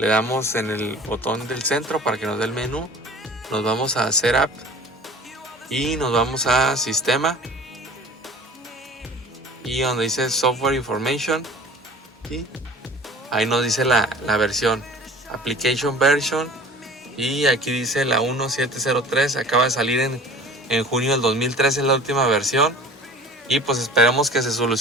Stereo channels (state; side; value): normal; both; correlation 0.43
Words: damos en el botón del centro para que nos dé el menú, nos vamos a Setup y nos vamos a Sistema, y donde dice Software Information, ¿sí? Ahí nos dice la versión, Application Version, y aquí dice la 1703, acaba de salir en junio del 2013, es la última versión. Y pues esperemos que se